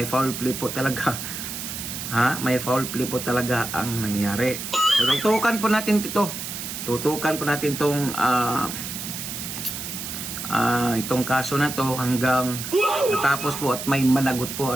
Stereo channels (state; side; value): noise; right; hiss, 7 dB below the sound